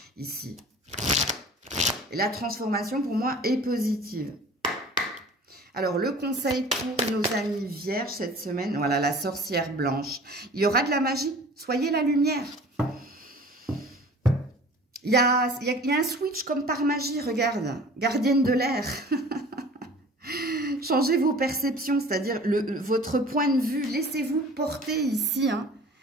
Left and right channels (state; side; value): normal; both; correlation 0.45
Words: ici. Et la transformation, pour moi, est positive. Alors, le conseil pour nos amis vierges cette semaine, voilà, la sorcière blanche. Il y aura de la magie, soyez la lumière. Il y a un switch comme par magie, regarde, gardienne de l'air. Changez vos perceptions, c'est-à-dire votre point de vue, laissez-vous porter ici.